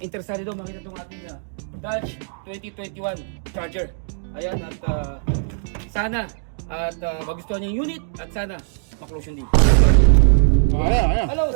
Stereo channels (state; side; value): silent; left; digital silence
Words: daw makita itong ating Dodge 2021 Charger. Ayan, at sana at magustuhan niya yung unit at sana maklose yung deal. Ayan. Hello